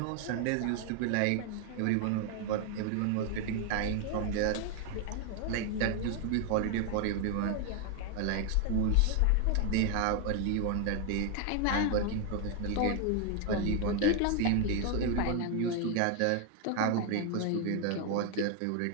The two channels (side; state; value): both; different; correlation 0.01